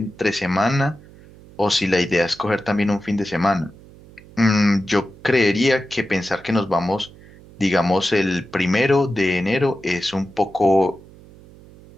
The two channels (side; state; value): right; noise; hum, 22 dB below the sound